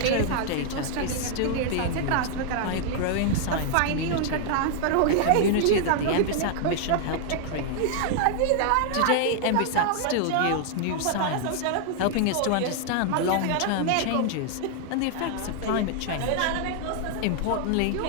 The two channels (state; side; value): different; both; correlation 0.00